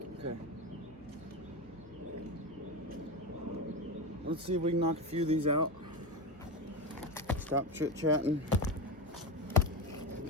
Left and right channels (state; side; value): normal; both; correlation 0.18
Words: Okay. Let's see if we can knock a few of these out. Stop chit-chatting.